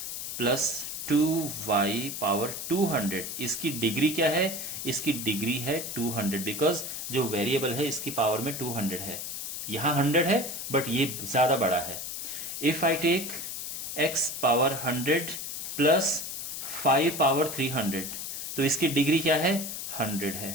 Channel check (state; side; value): noise; left; hiss, 6 dB below the sound